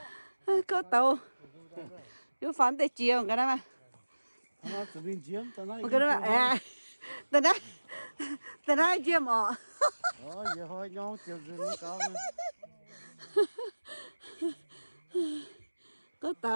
Có tàu. Chú phán tới chiều cái đó mà. Nó từ bên chiếm, tao nói. Cái đó mà à. Tao nói chiêm ọ. Giờ thôi nhau chiều rồi nó cao. Có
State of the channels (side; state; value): both; inverted; correlation -1.00